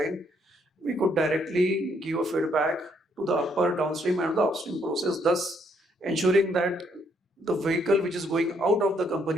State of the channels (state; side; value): normal; both; correlation 0.71